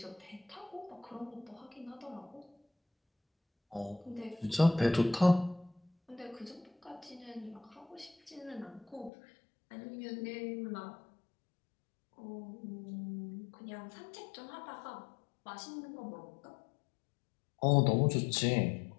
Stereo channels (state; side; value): drops out; right; at 9.1 s